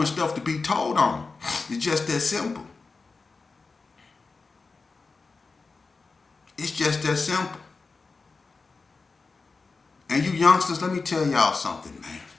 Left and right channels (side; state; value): right; quieter; 4.2 dB